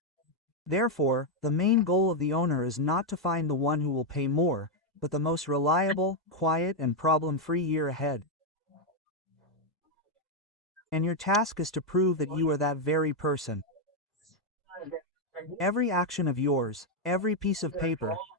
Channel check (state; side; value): normal; both; correlation 0.01